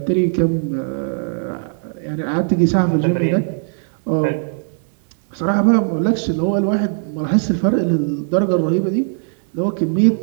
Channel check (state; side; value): silent; left; digital silence